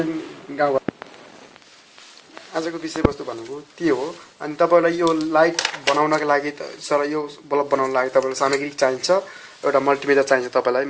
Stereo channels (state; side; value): identical; both; correlation 1.00